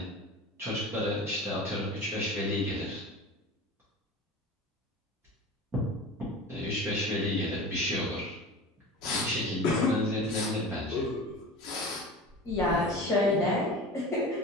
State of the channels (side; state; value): both; normal; correlation 0.34